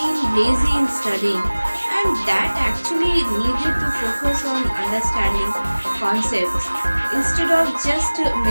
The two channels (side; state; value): both; inverted; correlation -1.00